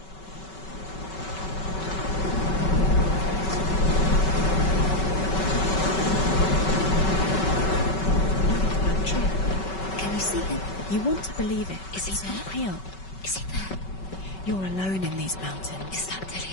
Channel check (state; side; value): late; right; 5.3 ms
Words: Can you see him? You want to believe it. Is he not real? Is he there? You're alone in these mountains. Is that